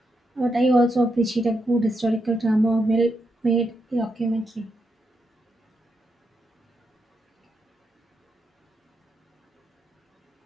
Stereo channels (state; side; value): normal; both; correlation 0.82